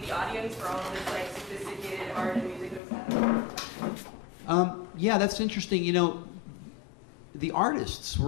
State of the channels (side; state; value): right; drops out; at 2.8 s